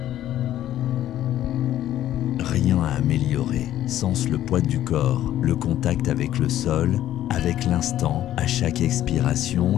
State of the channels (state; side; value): quieter; right; 12.5 dB